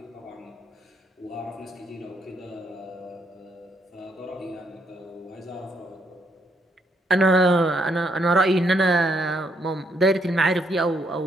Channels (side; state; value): both; normal; correlation 0.73